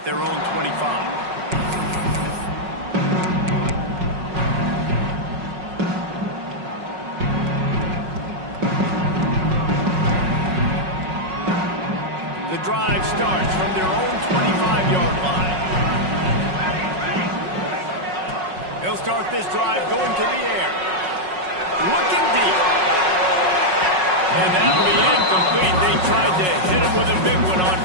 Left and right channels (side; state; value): left; late; 5.4 ms